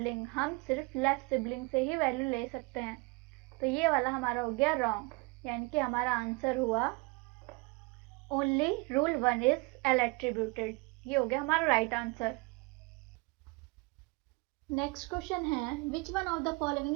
हम सिर्फ लेफ्ट सिबलिंग से ही वैल्यू ले सकते हैं। तो ये वाला हमारा हो गया रॉन्ग, यानी कि हमारा आंसर हुआ only rule 1 is L attributed. ये हो गया हमारा राइट आंसर। नेक्स्ट क्वेश्चन है which one of the following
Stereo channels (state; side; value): quieter; left; 27.5 dB